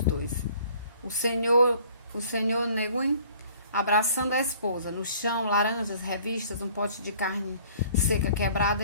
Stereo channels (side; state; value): both; inverted; correlation -0.54